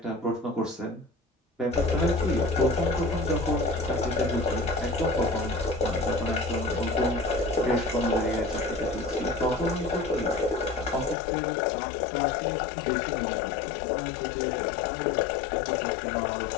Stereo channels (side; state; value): right; drops out; at 11.2 s